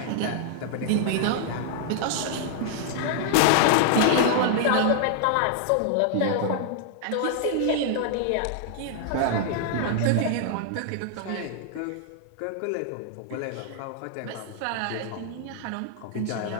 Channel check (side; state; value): both; different; correlation 0.00